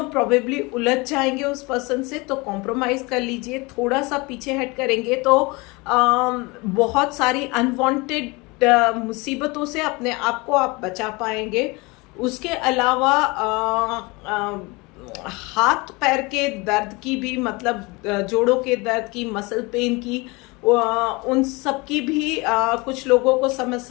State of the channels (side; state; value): right; quieter; 25.6 dB